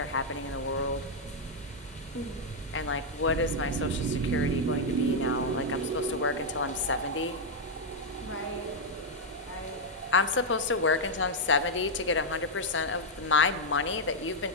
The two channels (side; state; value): both; normal; correlation -0.02